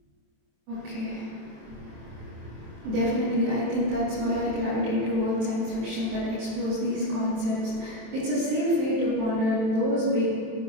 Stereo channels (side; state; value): left; late; 27 ms